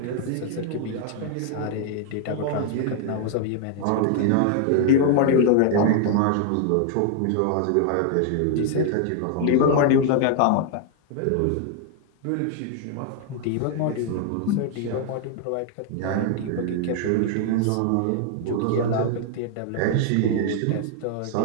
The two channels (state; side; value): different; both; correlation 0.00